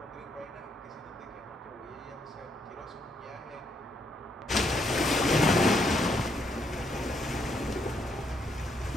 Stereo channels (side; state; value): both; normal; correlation 0.74